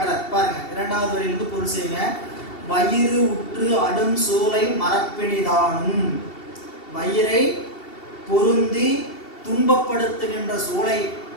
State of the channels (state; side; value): late; right; 2.7 ms